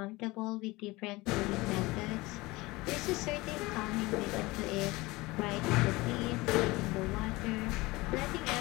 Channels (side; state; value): right; quieter; 21.7 dB